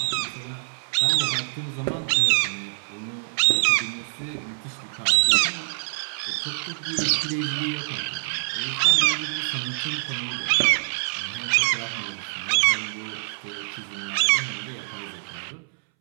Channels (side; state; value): left; silent; 62 dB below the other